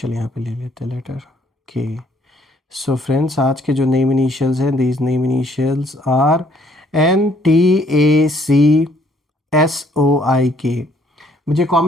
यहाँ पे ले लेते हैं, लेटर के। सो फ्रेंड्स, आज के जो नेम इनिशियल्स हैं, these name initials are N, T, A, C, S, O, I, K. मुझे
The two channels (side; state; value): both; normal; correlation 0.64